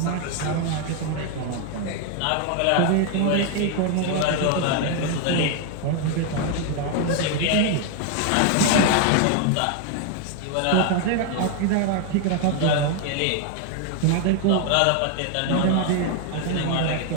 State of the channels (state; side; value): different; both; correlation 0.00